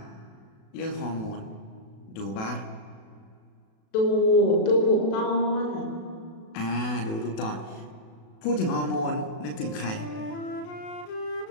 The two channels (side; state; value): right; late; 36 ms